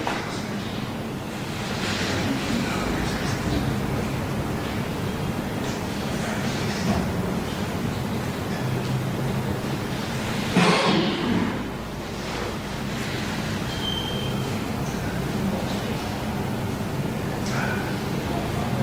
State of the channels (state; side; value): identical; both; correlation 1.00